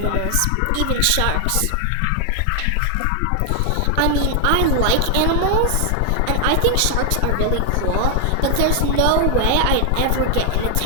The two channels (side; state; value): both; different; correlation 0.00